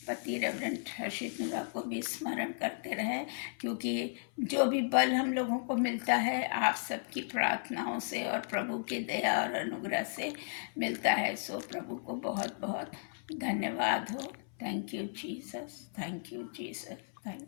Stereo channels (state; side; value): silent; right; 55 dB below the other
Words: पति रेवरेंड हर्षित नूरा को भी स्मरण करते रहें, क्योंकि जो भी बल हम लोगों को मिलता है आप सबकी प्रार्थनाओं से और प्रभु की दया और अनुग्रह से मिलता है। सो प्रभु को बहुत बहुत धन्यवाद हो। Thank you Jesus, thank you Jesus,